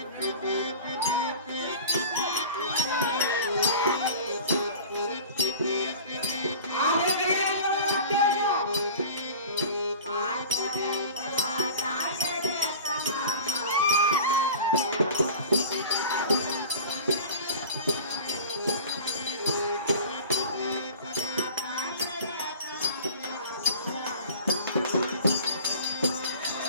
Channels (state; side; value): inverted; both; correlation -0.38